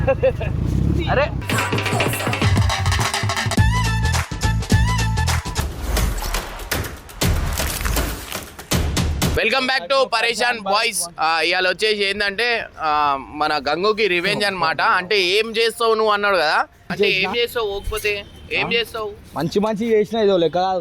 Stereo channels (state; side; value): identical; both; correlation 1.00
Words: అరే వెల్కమ్ బ్యాక్ టు పరేషాన్ బాయ్స్. ఇవాళ వచ్చేసి ఏంటంటే మన గంగుకి రివెంజ్ అన్నమాట. అంటే ఏం చేస్తావు నువ్వు అన్నాడు కదా, అంటే ఏం చేస్తావు పోకపోతే ఏం చేస్తావు? మంచి మంచి చేసిన ఇదో లెక్క